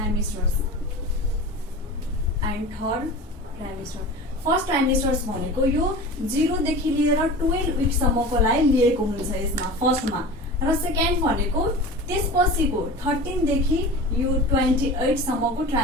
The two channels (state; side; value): normal; both; correlation 0.34